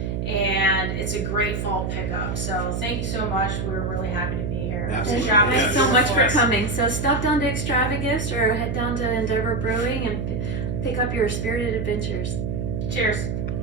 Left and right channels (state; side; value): noise; right; hum, 2 dB below the sound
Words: And it's a great fall pickup. So thank you so much. We're really happy to be here. Absolutely. Thanks so much for coming. So stop down to Extravagifts or head down to Endeavor Brewing and pick up your spirited adventures. Cheers.